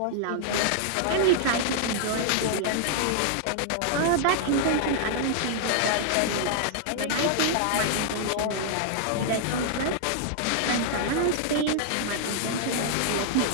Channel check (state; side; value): different; both; correlation -0.01